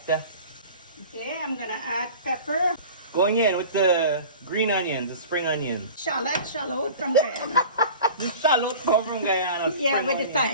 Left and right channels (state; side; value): inverted; both; correlation -0.40